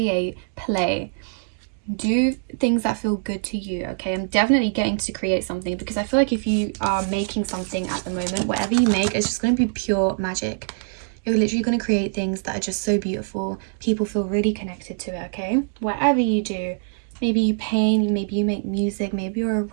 play. Do things that feel good to you, okay? I'm definitely getting to create something because I feel like if you are making something at the moment, whatever you make is just going to be pure magic. You're literally going to create things that are just so beautiful. People feel really connected to it, okay? Whatever you do, maybe you paint, maybe you make music, maybe you're a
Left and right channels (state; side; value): silent; left; digital silence